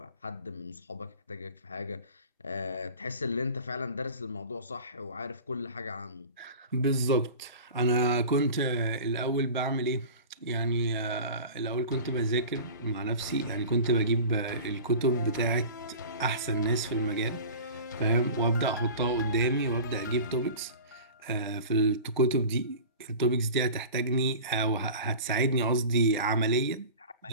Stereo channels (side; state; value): both; inverted; correlation -0.37